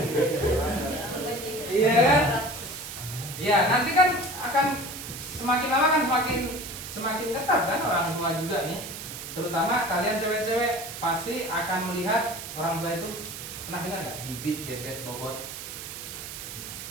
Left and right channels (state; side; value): noise; right; hiss, 9 dB below the sound